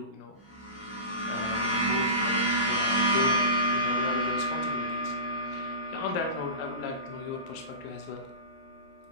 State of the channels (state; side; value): late; right; 20 ms